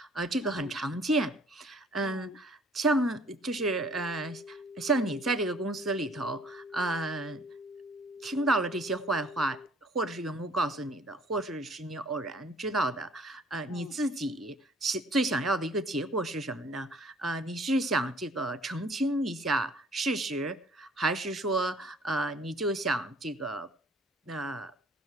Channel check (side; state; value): both; normal; correlation 0.55